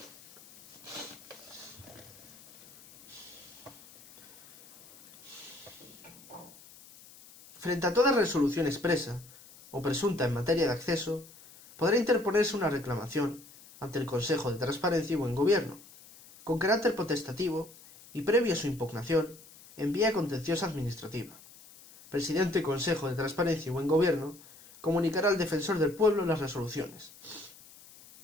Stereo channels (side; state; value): left; noise; hiss, 22 dB below the sound